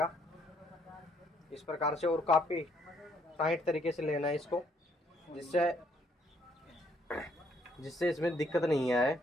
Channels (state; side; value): normal; both; correlation 0.68